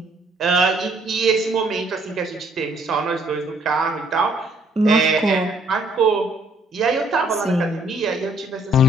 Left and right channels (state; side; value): normal; both; correlation 0.65